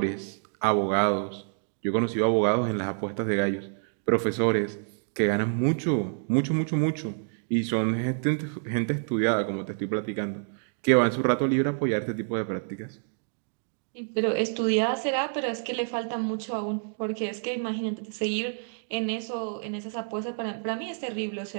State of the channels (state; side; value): silent; left; digital silence